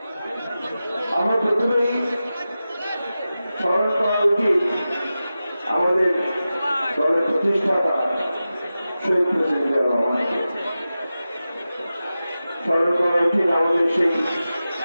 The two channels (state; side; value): inverted; both; correlation -0.94